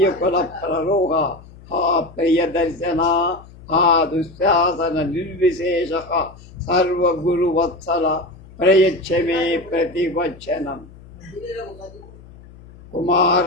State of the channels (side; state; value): left; noise; hum, 21 dB below the sound